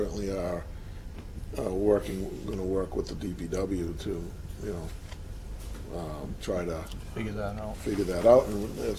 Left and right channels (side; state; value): both; identical; correlation 1.00